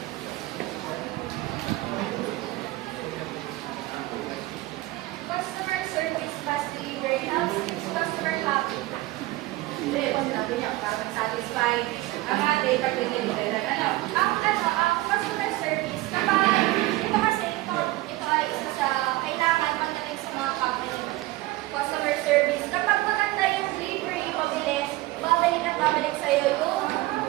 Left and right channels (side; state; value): left; quieter; 18.6 dB